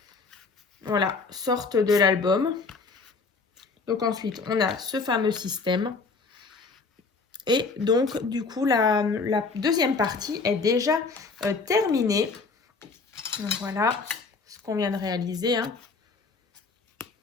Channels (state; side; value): quieter; right; 4.3 dB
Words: voilà, sorte de l'album. Donc, ensuite, on a ce fameux système. Et donc, du coup, la deuxième partie est déjà terminée. Donc, voilà ce qu'on vient de réaliser. Hein.